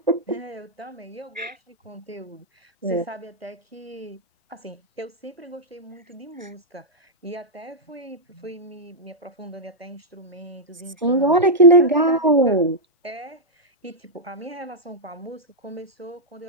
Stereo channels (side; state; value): both; normal; correlation -0.05